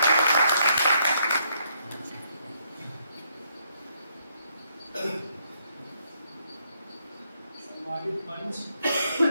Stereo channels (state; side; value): inverted; both; correlation -0.73